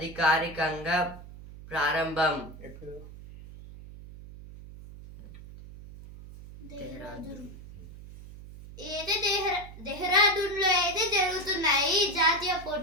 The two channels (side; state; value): right; noise; hum, 16 dB below the sound